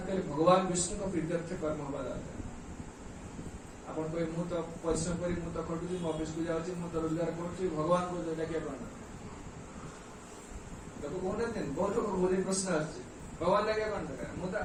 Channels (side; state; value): both; identical; correlation 1.00